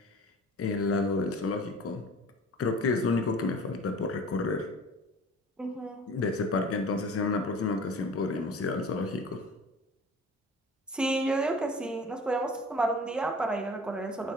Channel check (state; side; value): normal; both; correlation 0.43